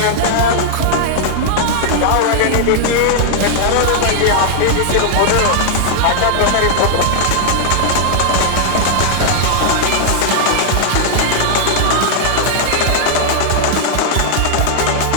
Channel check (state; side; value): different; both; correlation 0.00